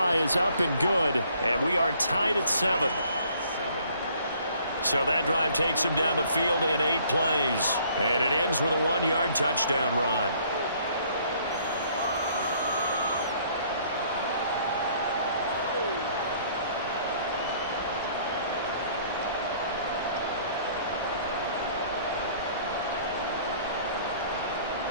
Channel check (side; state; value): both; inverted; correlation -0.60